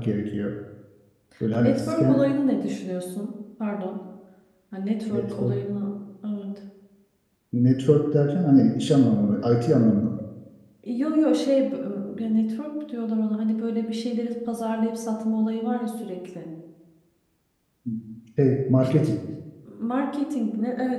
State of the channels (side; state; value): both; identical; correlation 1.00